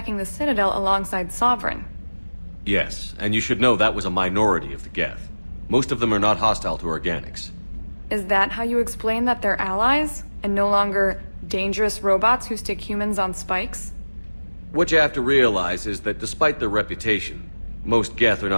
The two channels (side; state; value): both; inverted; correlation -1.00